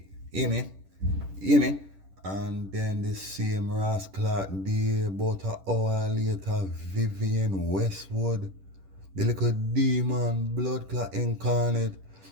yeah, man. Yeah, man. And then the same Ross Clark there, about an hour later, Vivian Westwood, the little demon, blood clot incarnate.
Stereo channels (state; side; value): late; left; 10 ms